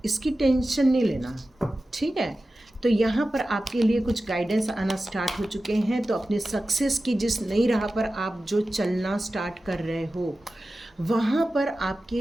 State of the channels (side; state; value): both; normal; correlation 0.94